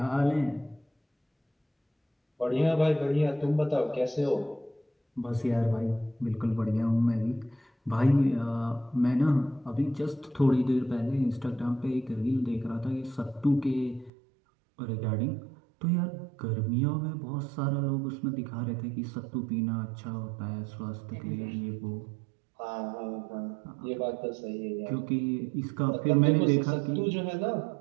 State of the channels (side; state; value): left; drops out; at 14.1 s